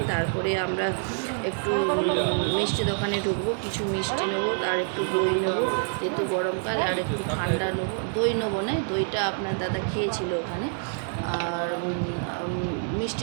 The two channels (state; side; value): silent; left; 60 dB below the other